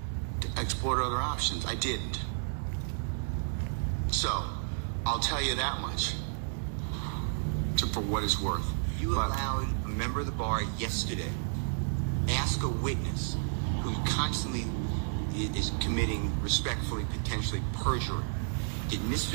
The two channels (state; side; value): silent; left; digital silence